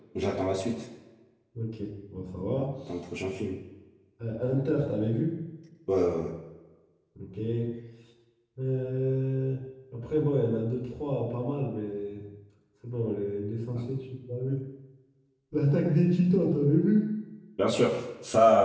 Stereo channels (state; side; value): identical; both; correlation 1.00